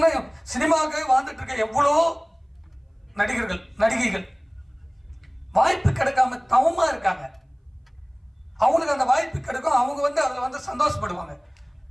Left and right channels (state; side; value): identical; both; correlation 1.00